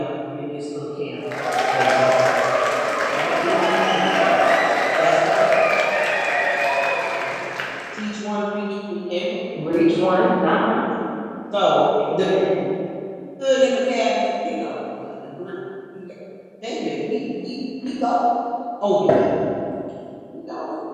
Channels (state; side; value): identical; both; correlation 1.00